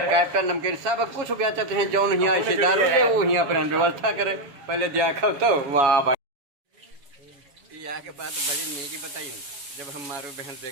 कैप्टन नमकीन सब कुछ बेचत हैं। जौन यहाँ ऐसे दारू है वो यहाँ पर व्यवस्था करे। पहले देखो तो वाह भाई। यहाँ के बात बड़ी नीकी बताई। जब हम मारू बहन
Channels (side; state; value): left; late; 7.2 ms